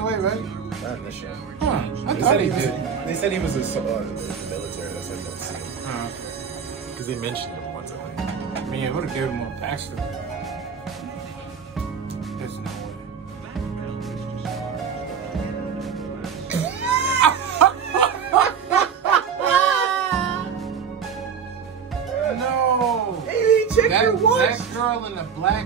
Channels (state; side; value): quieter; left; 6.9 dB